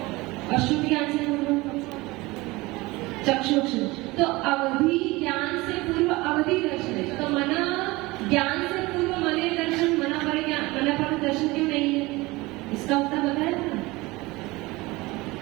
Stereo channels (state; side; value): quieter; left; 21.7 dB